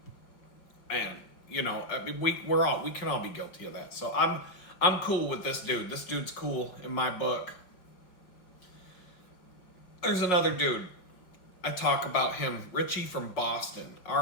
you know, I mean, we can all be guilty of that. So I'm cool with this dude. This dude's cool in my book. There's another dude. I talk about him, Richie from Boston,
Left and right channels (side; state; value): right; late; 5.5 ms